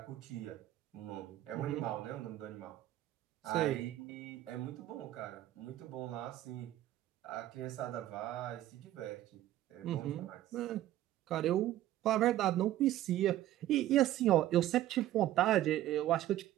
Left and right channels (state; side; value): quieter; left; 13.8 dB